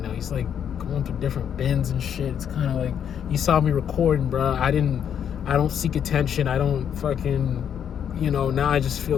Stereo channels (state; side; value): quieter; right; 8.6 dB